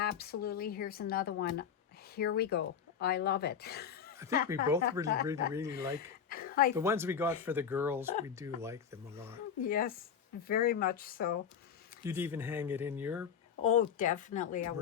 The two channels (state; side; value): quieter; right; 7.6 dB